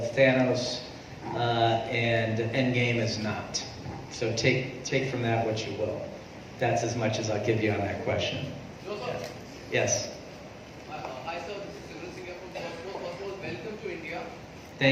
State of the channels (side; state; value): both; identical; correlation 1.00